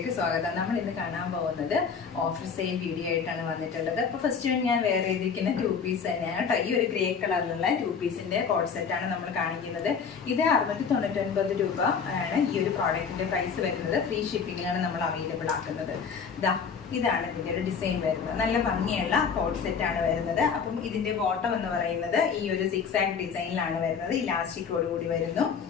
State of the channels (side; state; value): right; quieter; 6.2 dB